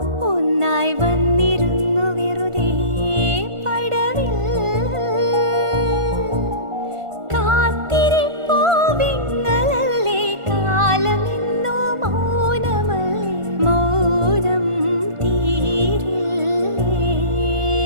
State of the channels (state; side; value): late; left; 1.4 ms